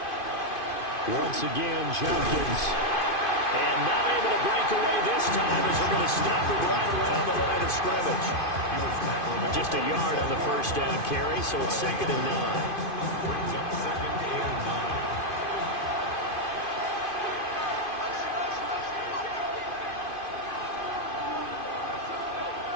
Once again, Jenkins. And not able to break away this time as they're going to stop it right around the line of scrimmage. Just a yard on the first down carry, so it's 2nd and 9. Brings up 2nd and 9.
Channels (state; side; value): late; right; 2.5 ms